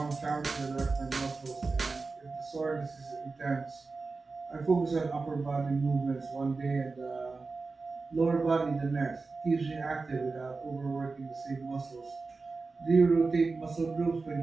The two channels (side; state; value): left; quieter; 4.0 dB